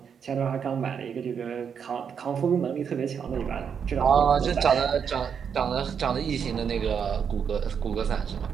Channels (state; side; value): quieter; left; 7.2 dB